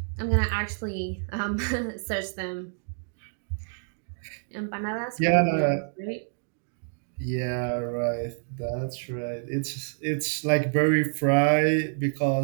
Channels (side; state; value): left; silent; digital silence